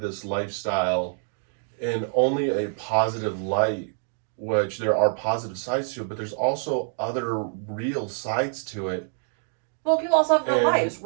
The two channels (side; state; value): left; silent; digital silence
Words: lifestyle in only a positive light, which there are positive sides to it, but there's also other real sides to it. Well, people also have real lives,